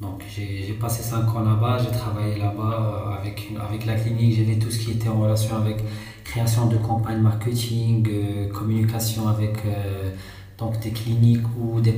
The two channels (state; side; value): identical; both; correlation 1.00